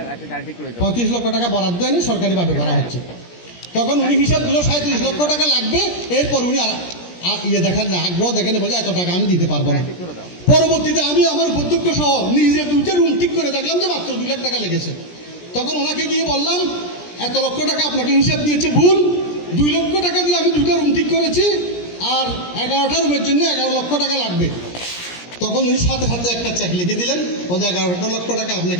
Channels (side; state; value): right; late; 17 ms